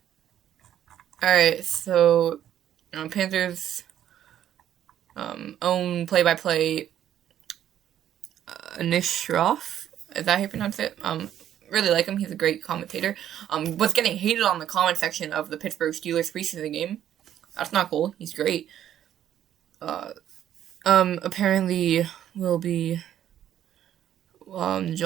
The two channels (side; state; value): left; quieter; 10.9 dB